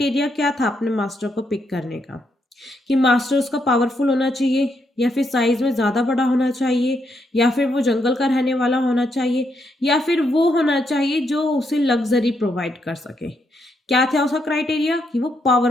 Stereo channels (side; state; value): both; normal; correlation 0.78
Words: क्या था अपने मास्टर को पिक करने का? कि मास्टर उसका पावरफुल होना चाहिए, या फिर साइज में ज़्यादा बड़ा होना चाहिए, या फिर वो जंगल का रहने वाला होना चाहिए, या फिर वो होना चाहिए जो उसे लग्जरी प्रोवाइड कर सके। क्या था उसका क्राइटेरिया? कि वो